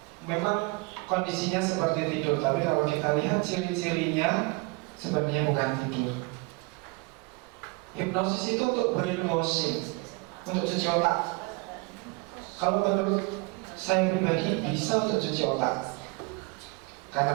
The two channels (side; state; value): left; quieter; 27.0 dB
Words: Memang kondisinya seperti tidur, tapi kalau kita lihat ciri-cirinya sebenarnya bukan tidur. Hipnosis itu untuk brainwashing, untuk cuci otak. Kalau menurut saya pribadi bisa untuk cuci otak.